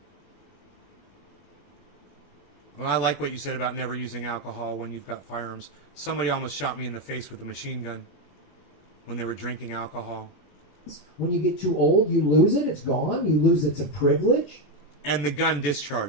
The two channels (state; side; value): late; right; 21 ms